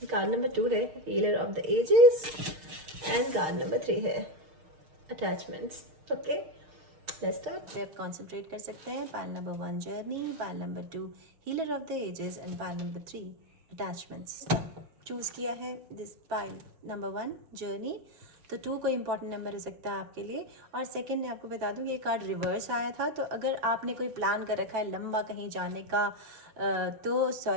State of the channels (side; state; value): left; late; 6.5 ms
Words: कार्ड नंबर 2 है healer of the ages and card number 3 है अटैचमेंट्स। Okay, let's start. पे आप कॉन्सेंट्रेट कर सकते हैं। Pile number 1 journey, pile number 2 healer of the ages and pile number 3 attachments. Choose किया है दिस पाइल नंबर 1 जर्नी, तो 2 कोई इंपॉर्टेंट नंबर हो सकता है आपके लिए। और सेकंड मैं आपको बता दूं ये कार्ड रिवर्स आया था, तो अगर आपने कोई प्लान कर रखा है लंबा कहीं जाने का तो